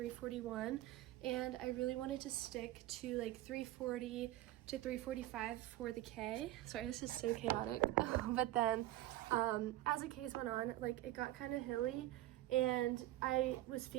and I really wanted to stick to like 3:40 to 3:45 for the K. Sorry, this is so chaotic. But then as the Ks went on, like it got kind of hilly, and I was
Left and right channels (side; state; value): left; quieter; 15.3 dB